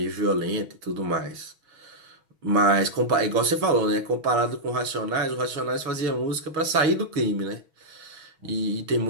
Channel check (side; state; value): left; late; 6.2 ms